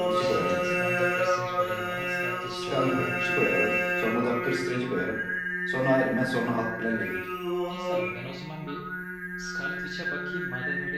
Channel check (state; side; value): identical; both; correlation 1.00